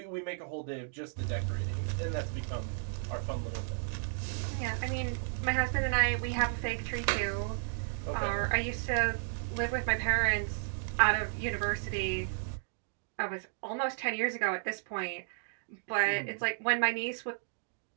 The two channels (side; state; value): left; silent; digital silence